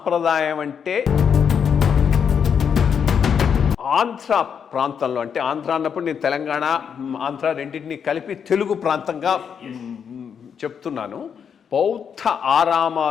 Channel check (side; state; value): right; quieter; 7.3 dB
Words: అంటే ఆంధ్ర ప్రాంతంలో, అంటే ఆంధ్ర అన్నప్పుడు నేను తెలంగాణ ఆంధ్ర రెండింటినీ కలిపి తెలుగు ప్రాంతంగా చెప్తున్నాను. బౌద్ధ